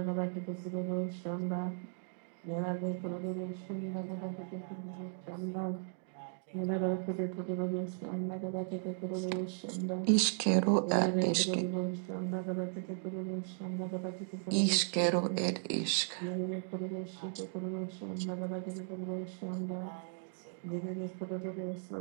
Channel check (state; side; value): silent; left; digital silence